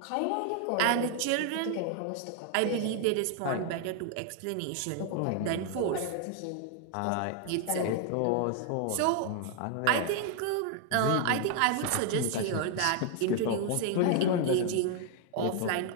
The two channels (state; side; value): different; both; correlation 0.00